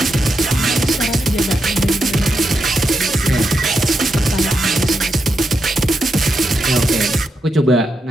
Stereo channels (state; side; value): normal; both; correlation 0.85